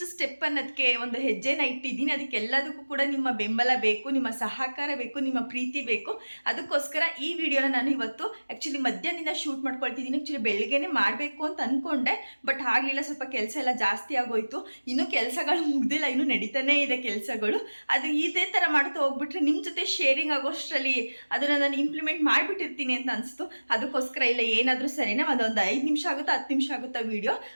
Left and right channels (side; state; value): both; inverted; correlation -1.00